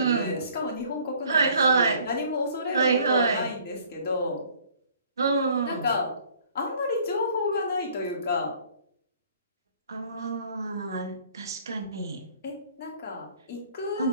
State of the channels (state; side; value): inverted; both; correlation -0.56